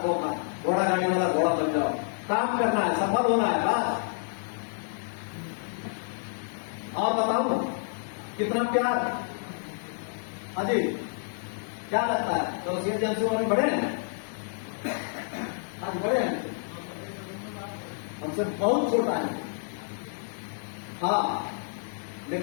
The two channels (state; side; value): silent; right; digital silence